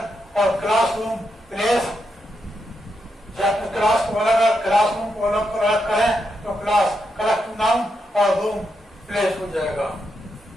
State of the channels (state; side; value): normal; both; correlation 0.83